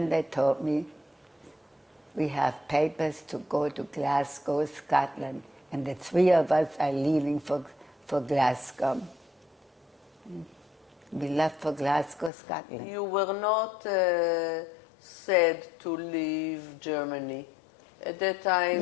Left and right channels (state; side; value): drops out; right; at 12.3 s